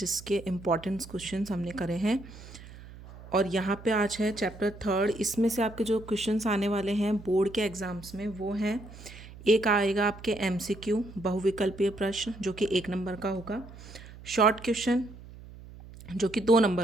इम्पॉर्टेंट क्वेश्चंस हमने करे हैं और यहाँ पे आज है चैप्टर 3। इसमें से आपके जो क्वेश्चंस आने वाले हैं बोर्ड के एग्ज़ाम्स में वो हैं, एक आएगा आपके MCQ बहुविकल्पीय प्रश्न जो कि 1 नंबर का होगा, शॉर्ट क्वेश्चन जो कि 2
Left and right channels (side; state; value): right; noise; hum, 17 dB below the sound